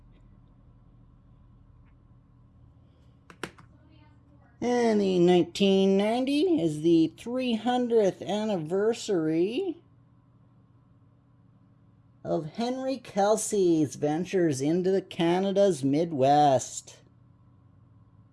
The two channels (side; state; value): both; identical; correlation 1.00